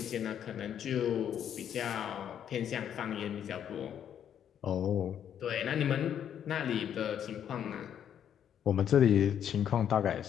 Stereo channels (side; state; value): right; quieter; 9.4 dB